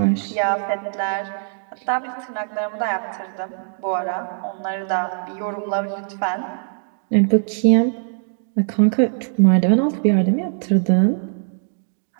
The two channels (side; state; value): left; silent; digital silence